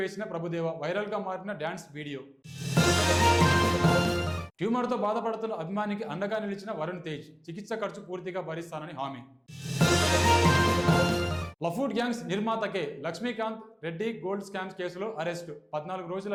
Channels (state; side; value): identical; both; correlation 1.00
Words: ప్రభుదేవ, వైరల్గా మారిన డ్యాన్స్ వీడియో. ట్యూమర్తో బాధపడుతున్న అభిమానికి అండగా నిలిచిన వరుణ్ తేజ్, చికిత్స ఖర్చు పూర్తిగా భరిస్తానని హామీ. లఫూట్ గ్యాంగ్స్ నిర్మాతకే లక్ష్మీకాంత్ రెడ్డి గోల్డ్ స్కామ్స్ కేసులో అరెస్టు, 14 రోజుల